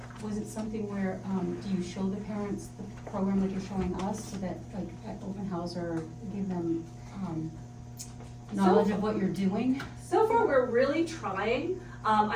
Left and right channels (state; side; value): identical; both; correlation 1.00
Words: was it something where, do you show the parents the program that you're showing us so that like at open house or give them, knowledge of what you're doing? So far, we're really trying.